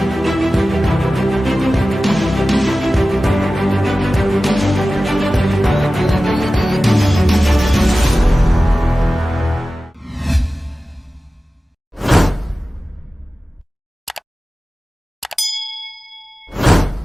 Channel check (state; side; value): normal; both; correlation 0.95